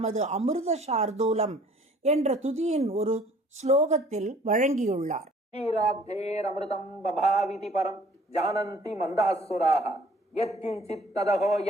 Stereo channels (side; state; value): both; normal; correlation 0.55